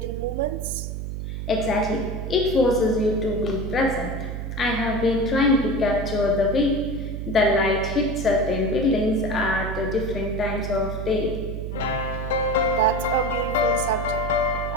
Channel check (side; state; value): right; noise; hum, 5 dB below the sound